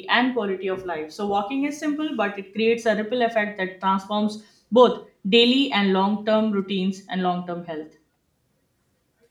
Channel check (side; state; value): both; identical; correlation 1.00